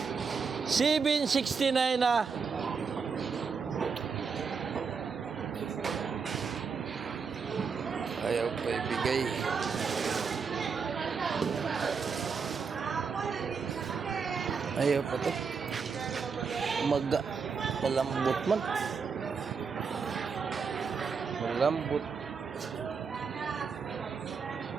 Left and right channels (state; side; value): quieter; left; 5.6 dB